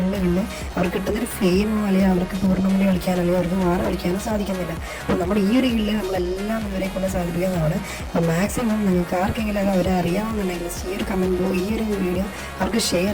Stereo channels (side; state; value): both; identical; correlation 1.00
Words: അവർക്ക് കിട്ടുന്നൊരു ഫെയിമോ അല്ലെങ്കിൽ അവർക്ക് ടൂർണമെൻറ്റ് കളിക്കാനോ അല്ലെങ്കിൽ അവർക്ക് വാർ കളിക്കാനോ സാധിക്കുന്നില്ല. അപ്പോൾ നമ്മുടെ ഈ ഒരു ഗില്ല് നമ്മളെല്ലാം ഇവരെ കൊണ്ട് സാധിപ്പിക്കുന്നതാണ്. അപ്പോൾ മാക്സിമം നിങ്ങൾക്ക് ആർക്കെങ്കിലും അത് അവരെ അറിയാവുന്നുണ്ടെങ്കിൽ ഈ ഒരു കമൻറ്റ് ഈ ഒരു വീഡിയോ അവർക്ക് ഷെയർ